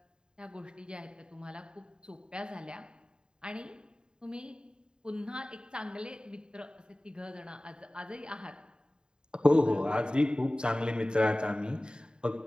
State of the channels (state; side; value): late; left; 0.048 ms